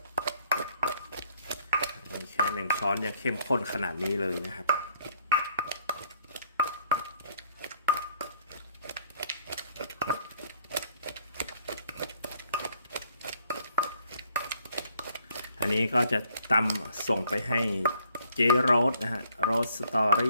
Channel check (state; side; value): inverted; both; correlation -0.65